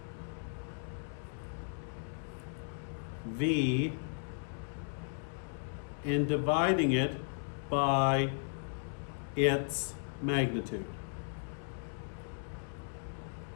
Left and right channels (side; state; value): right; silent; digital silence